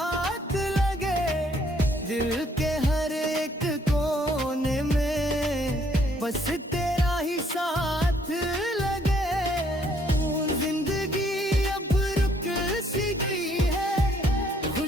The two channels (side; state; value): both; normal; correlation 0.66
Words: लगे। दिल के हर एक कोने में बस तेरा ही साथ लगे। जिंदगी अब रुक सी गई है,